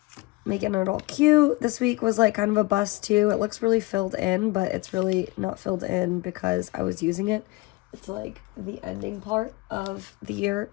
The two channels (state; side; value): quieter; right; 22.5 dB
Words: making it all cute. This week was like kind of a bust too. It looks really filled in, but it's really not filled in because I was using it. It's like the ending part of the year,